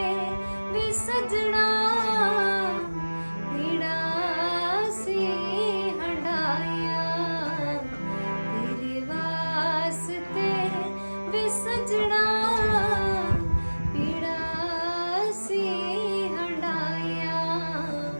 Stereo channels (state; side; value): inverted; both; correlation -1.00